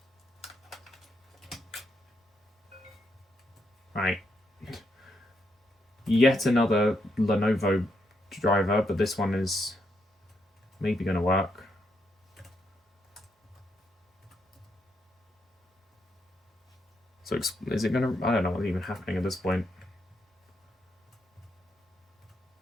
Right. Yet another Lenovo driver, but this one is maybe going to work. So is it going to... I don't know what's even happening at this point.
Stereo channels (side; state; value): both; normal; correlation 0.79